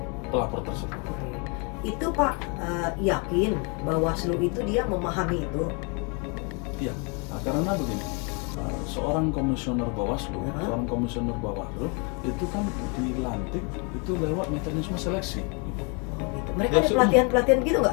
pelapor tersebut. Oke. Itu Pak yakin Bawaslu itu dia memahami itu? Iya, karena begini, seorang komisioner Bawaslu, seorang komisioner Bawaslu itu kan dilantik itu lewat mekanisme seleksi. Oh, gitu. Mereka Ya, ada pelatihan-pelatihan gitu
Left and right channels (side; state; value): right; quieter; 34.1 dB